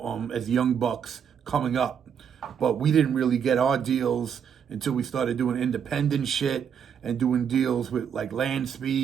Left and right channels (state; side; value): quieter; left; 7.8 dB